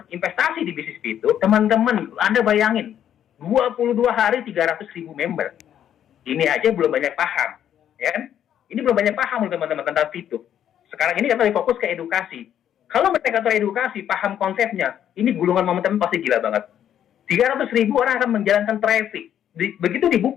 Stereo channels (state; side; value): quieter; right; 10.1 dB